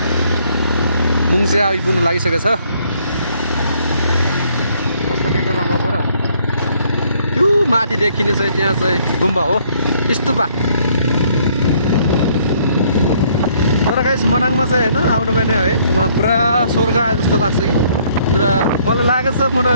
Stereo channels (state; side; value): inverted; both; correlation -0.65